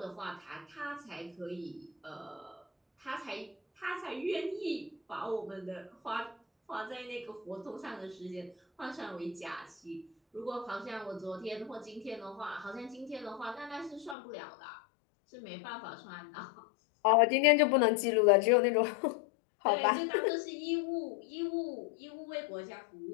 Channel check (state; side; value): drops out; right; at 14.2 s